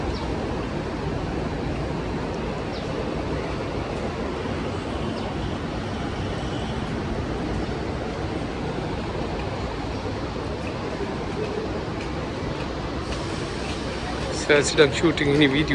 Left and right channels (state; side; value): identical; both; correlation 1.00